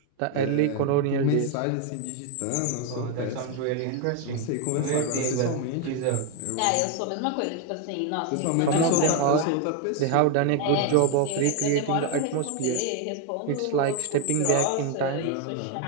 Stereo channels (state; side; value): different; both; correlation 0.01